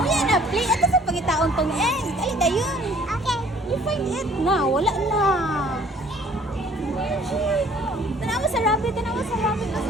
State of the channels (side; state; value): both; normal; correlation 0.56